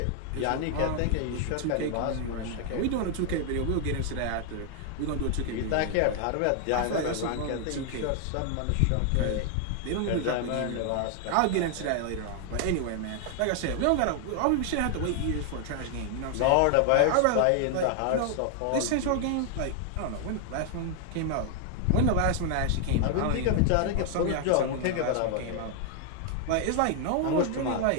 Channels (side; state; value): both; different; correlation 0.00